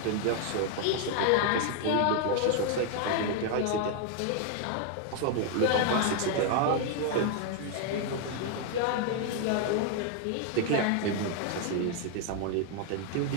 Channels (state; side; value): different; both; correlation 0.00